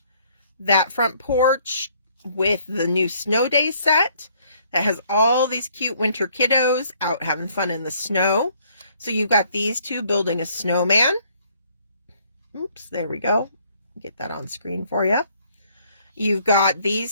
that front porch with the new Snow Day set that has all these cute winter kiddos out having fun in the snow. So you've got these two building a snowman. Oops, there we go. Get that on screen for you. You've got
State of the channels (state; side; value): inverted; both; correlation -0.64